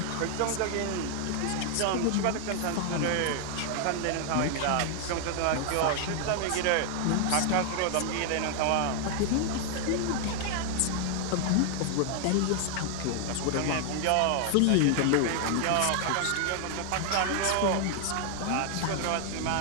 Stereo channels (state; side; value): different; both; correlation 0.00